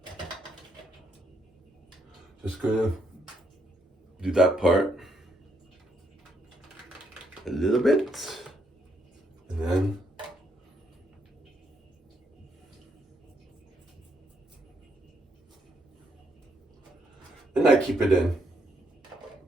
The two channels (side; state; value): both; normal; correlation 0.75